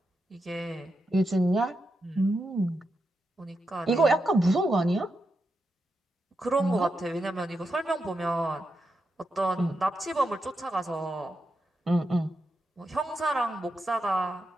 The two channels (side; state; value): both; normal; correlation 0.86